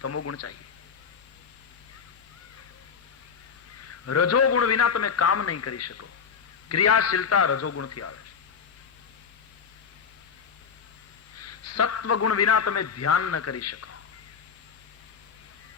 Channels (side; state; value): right; quieter; 6.4 dB